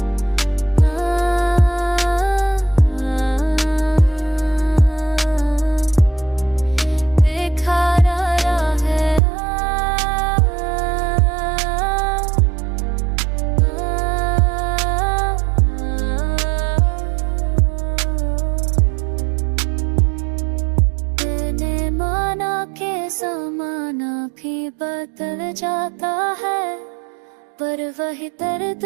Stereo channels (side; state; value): left; drops out; at 9.2 s